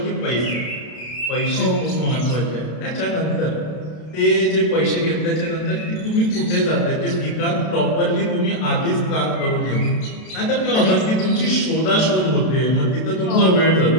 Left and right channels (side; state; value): right; late; 32 ms